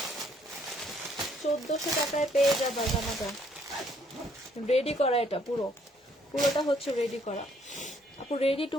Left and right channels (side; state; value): both; normal; correlation 0.67